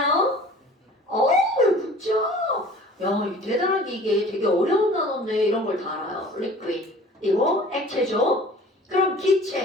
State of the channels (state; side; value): normal; both; correlation 0.47